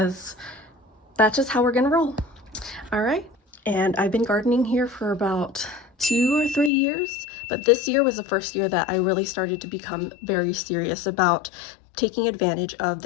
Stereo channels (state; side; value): drops out; right; at 6.7 s